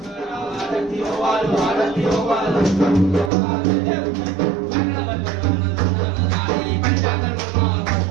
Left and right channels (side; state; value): left; drops out; at 3.3 s